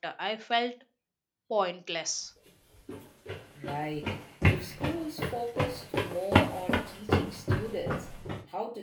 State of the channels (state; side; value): identical; both; correlation 1.00